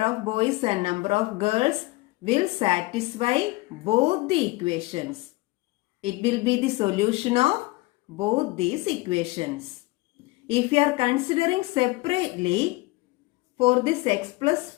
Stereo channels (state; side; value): quieter; right; 22.1 dB